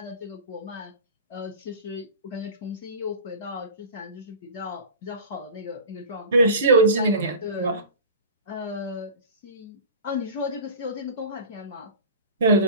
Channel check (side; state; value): both; inverted; correlation -0.34